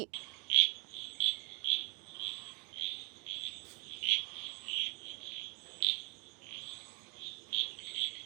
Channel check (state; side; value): quieter; left; 32.2 dB